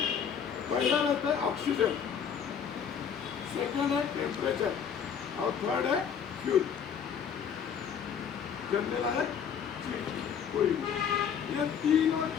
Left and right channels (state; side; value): quieter; right; 7.6 dB